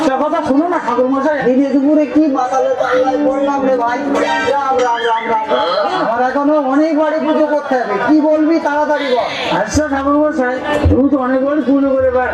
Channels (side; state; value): both; identical; correlation 1.00